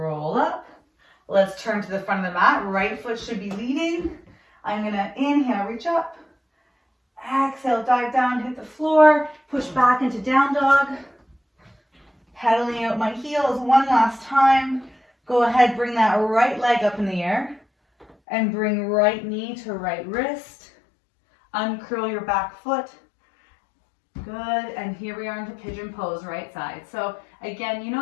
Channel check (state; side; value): drops out; right; at 18.2 s